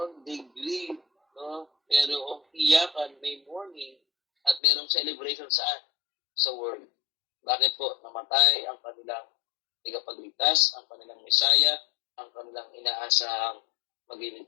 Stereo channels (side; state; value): right; drops out; at 4.6 s